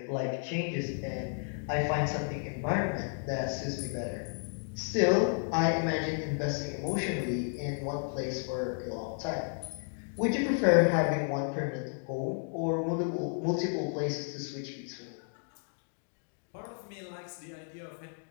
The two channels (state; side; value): silent; right; 56 dB below the other